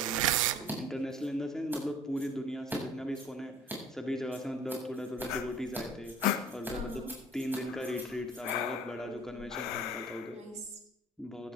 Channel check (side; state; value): both; normal; correlation 0.49